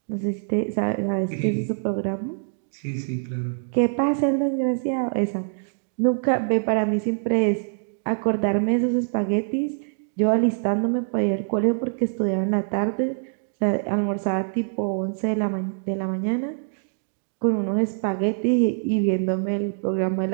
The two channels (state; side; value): silent; left; digital silence